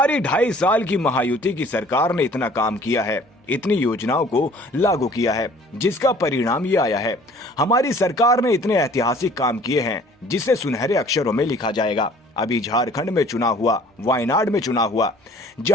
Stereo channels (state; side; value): normal; both; correlation 0.53